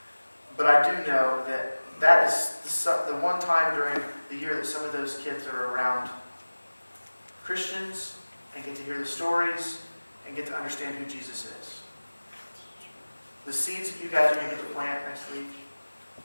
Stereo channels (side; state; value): both; inverted; correlation -1.00